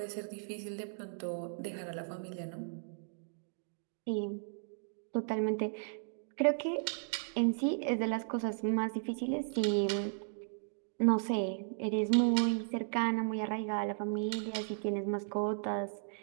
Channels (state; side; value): silent; left; digital silence